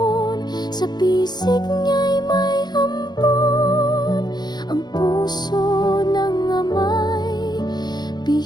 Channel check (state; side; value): late; right; 0.20 ms